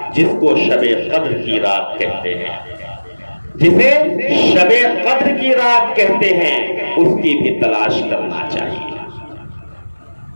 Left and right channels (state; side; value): inverted; both; correlation -1.00